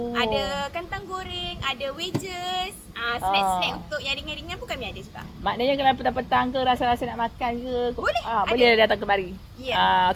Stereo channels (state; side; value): identical; both; correlation 1.00